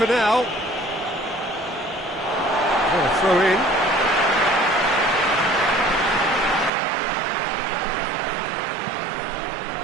now. What a throw in.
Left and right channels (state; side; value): drops out; left; at 6.7 s